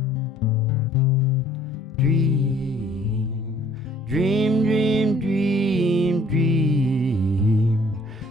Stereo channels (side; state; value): both; normal; correlation 0.58